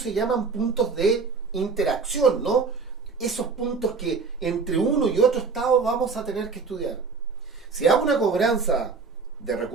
llaman puntos de interacción, ¿no? Esos puntos que entre uno y otro estado vamos a tener que estudiar. Si hago una cobranza de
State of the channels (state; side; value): quieter; left; 4.7 dB